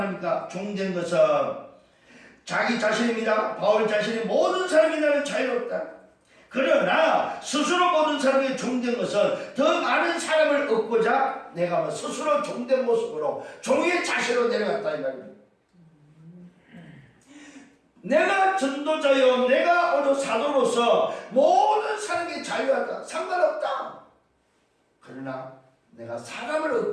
종된 것은 자기 자신입니다. 바울 자신이 모든 사람이 나는 자유롭다. 그러나 스스로 모든 사람에게 종된 것은 더 많은 사람을 얻고자 내가 스스로 종된 모습으로 종의 자세로 내려갔다 이 말입니다. 내가 전도자요, 내가 오늘 사도로서 모든 사람에게 자유하다. 상관없다. 그러나 내가 사람을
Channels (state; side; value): identical; both; correlation 1.00